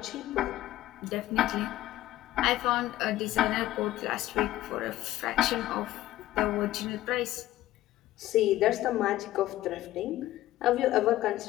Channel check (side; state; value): right; quieter; 15.1 dB